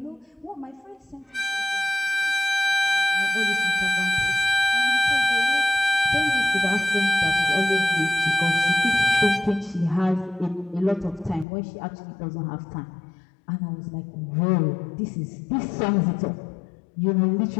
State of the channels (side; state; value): right; drops out; at 11.5 s